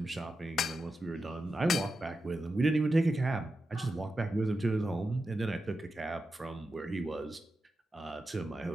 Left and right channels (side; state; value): both; normal; correlation 0.90